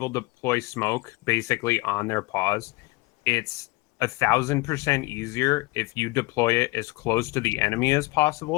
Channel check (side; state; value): right; quieter; 23.2 dB